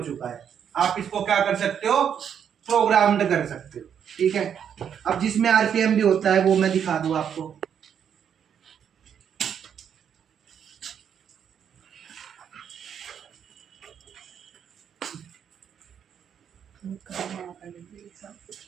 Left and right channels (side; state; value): left; quieter; 8.3 dB